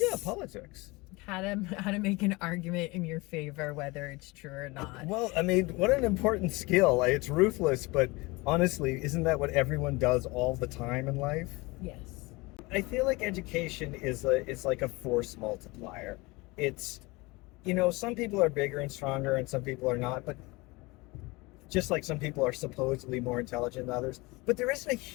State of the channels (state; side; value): quieter; right; 24.0 dB